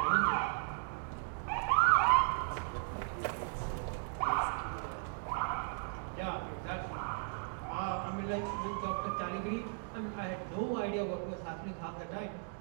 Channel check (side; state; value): left; silent; 53 dB below the other